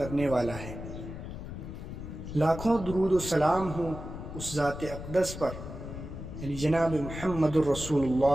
والا ہے۔ لاکھوں درود و سلام ہوں اس ذات اقدس پر یعنی جناب محمد الرسول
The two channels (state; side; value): noise; left; rumble, 9 dB below the sound